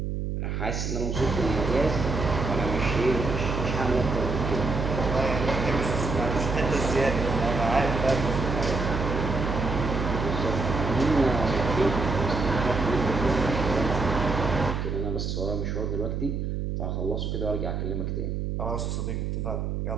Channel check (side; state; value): right; noise; hum, 2 dB below the sound